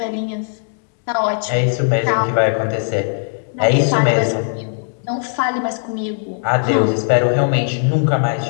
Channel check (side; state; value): right; silent; digital silence